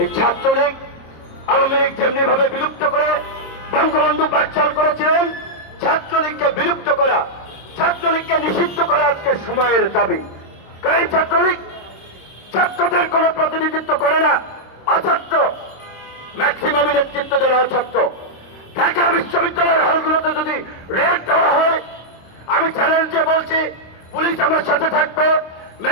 এই ছাত্রলীগ আওয়ামী লীগ যেমনি ভাবে বিলুপ্ত করে বঙ্গবন্ধু বাকশাল করেছিলেন, ছাত্রলীগকে বিলুপ্ত করা, ছাত্রলীগকে নিষিদ্ধ করা আজকে সময়ের দাবি। এই ছাত্রলীগ ছাত্রদের কোন প্রতিনিধিত্ব করে না, অছাত্র, ম্যাক্সিমাম নেতৃত্ব দেওয়া অছাত্র। ঢাকা বিশ্ববিদ্যালয়ের হলগুলোতে যদি রেড দেওয়া হয়, আমি চ্যালেঞ্জ দিয়ে বলছি, পুলিশ আমার সাথে থাকবে,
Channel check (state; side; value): late; right; 26 ms